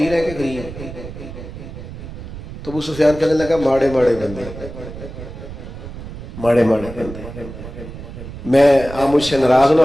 ہیں کہ غریب؟ تو ابو سفیان کہنے لگا ماڑے بندے، ماڑے بندے. میں آپ مجھ سے ناراض نہ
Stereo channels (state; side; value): noise; right; rumble, 12 dB below the sound